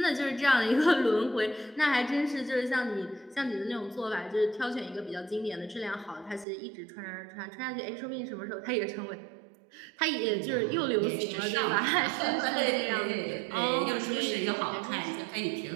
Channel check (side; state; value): left; drops out; at 6.5 s